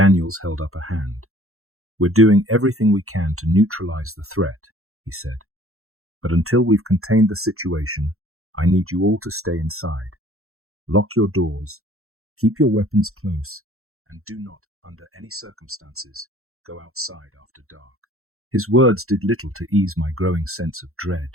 held up a hand. "We're doing everything we can to neutralize the threat," he said. "But until we've contained the situation, I need you all to stay inside. Lock your doors, keep your weapons close, and do not, under any circumstances, go outside after dark." His words did little to ease my growing sense of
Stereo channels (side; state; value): left; late; 0.63 ms